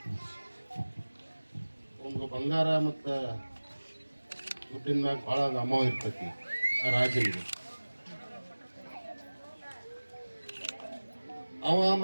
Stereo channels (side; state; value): both; inverted; correlation -1.00